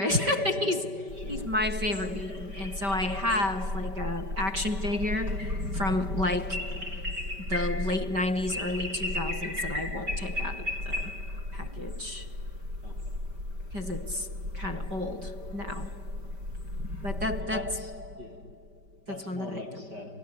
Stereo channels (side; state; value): left; late; 5.1 ms